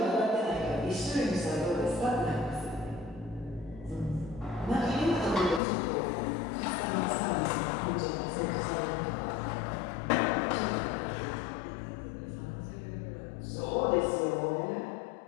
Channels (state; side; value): drops out; right; at 5.6 s